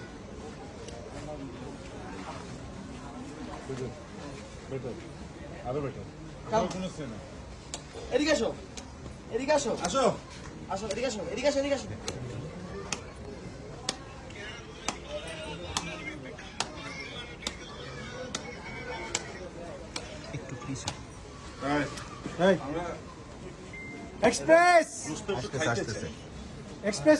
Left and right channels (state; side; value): identical; both; correlation 1.00